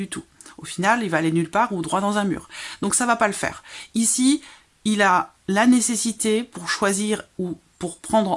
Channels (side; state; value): both; identical; correlation 1.00